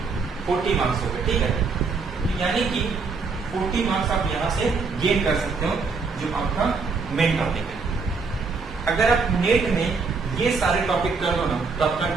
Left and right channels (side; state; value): left; quieter; 4.6 dB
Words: 40 मार्क्स हो गए, ठीक है। तो यानी कि 40 मार्क्स आप यहां से गेन कर सकते हो, जो आपका मेन टॉपिक है। अगर आप नेट में ये सारे टॉपिक कर दो ना तो आपका